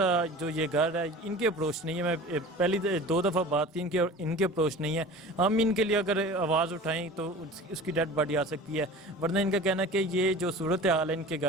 जो ये घर है, इनके अप्रोच नहीं है। मैं पहली 2 दफ़ा बात की इनके अप्रोच नहीं है। हम इनके लिए अगर आवाज़ उठाएं तो उसकी डेड बॉडी आ सकती है, वरना इनका कहना है कि ये जो सूरत हाल है इनके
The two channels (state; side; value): normal; both; correlation 0.39